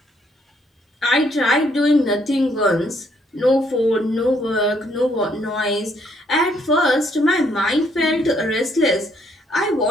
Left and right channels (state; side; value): normal; both; correlation 0.69